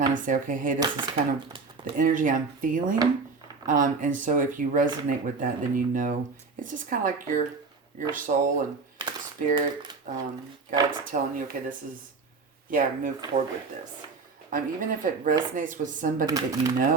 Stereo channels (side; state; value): left; quieter; 4.5 dB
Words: of say, okay, hey, this is kind of the energy I'm feeling. And so if you resonate with that, then it's just kind of like your soul and spirit guides telling you, okay, move forward with this. Even if it resonates with somebody that you